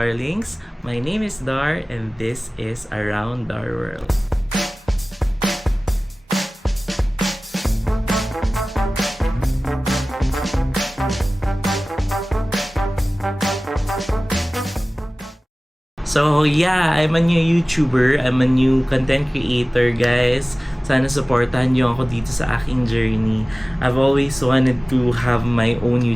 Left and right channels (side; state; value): both; normal; correlation 0.98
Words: my name is Dar and this is Around Dar World. So yeah, I'm a new YouTuber, I'm a new content creator guys. Sana supportahan niyo ako dito sa aking journey. I've always wanted to have my own